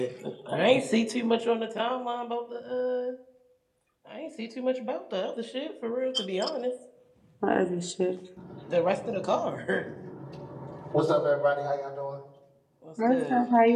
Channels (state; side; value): identical; both; correlation 1.00